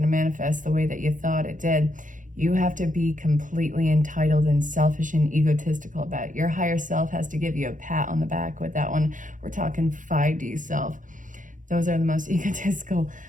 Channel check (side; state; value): left; late; 0.38 ms